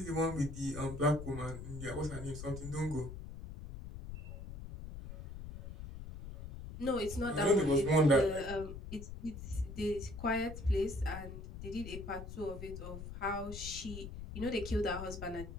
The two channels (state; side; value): noise; left; rumble, 10 dB below the sound